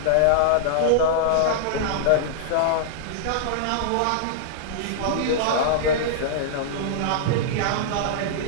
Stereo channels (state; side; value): different; both; correlation -0.01